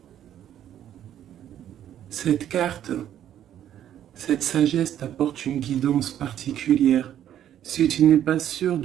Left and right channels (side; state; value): left; quieter; 10.8 dB